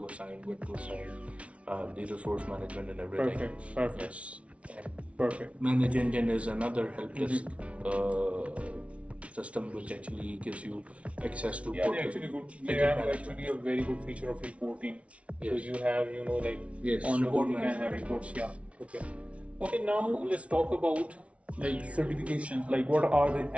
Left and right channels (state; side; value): late; left; 0.063 ms